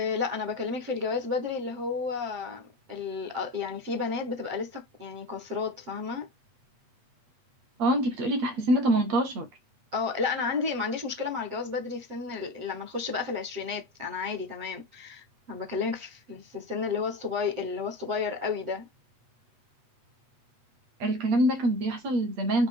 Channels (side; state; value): left; late; 8.3 ms